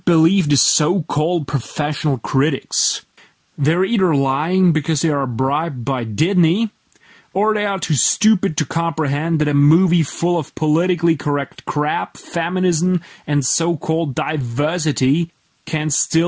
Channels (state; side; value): identical; both; correlation 1.00